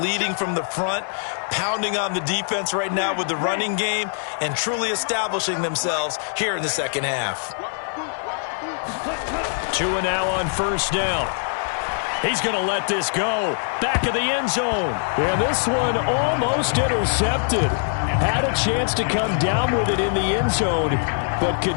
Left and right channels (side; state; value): right; silent; 64 dB below the other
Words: from the front, pounding on the defense right now with the running game, and truly establishing themselves here in the second half. 2 and now on 1st down. He's going to let this go. Back of the end zone. And this one almost intercepted. Had a chance to come down with it in the end zone, but